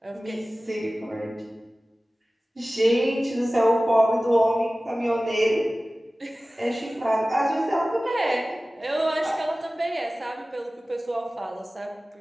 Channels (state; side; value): normal; both; correlation 0.97